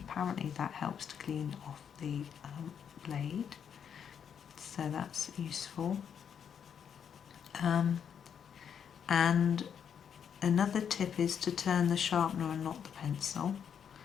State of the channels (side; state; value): right; quieter; 7.9 dB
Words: that helps to clean off the blade, so that's useful. And another tip is to turn the sharpener and not the pencil.